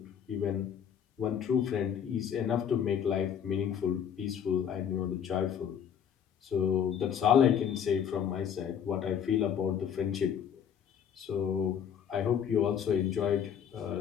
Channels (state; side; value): quieter; right; 8.4 dB